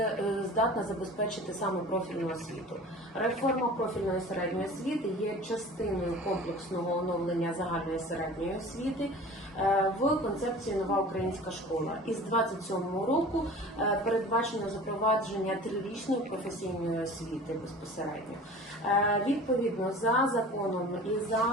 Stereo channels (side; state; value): both; normal; correlation 0.41